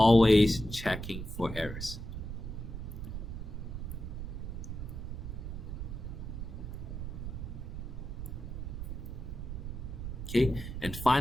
checking for errors. Okay, and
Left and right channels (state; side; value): noise; right; rumble, 6 dB below the sound